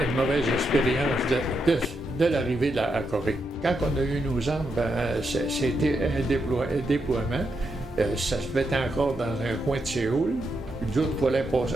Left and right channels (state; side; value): normal; both; correlation 0.83